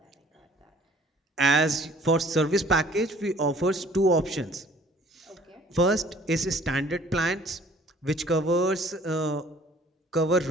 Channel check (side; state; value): both; normal; correlation 0.55